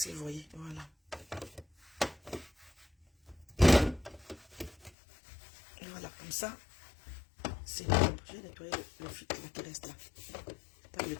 que vous voyez? Voilà. Et voilà, comme ça. C'est propre. Je vais nettoyer le filtre qui reste là. Pas le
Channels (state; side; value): drops out; right; at 4.9 s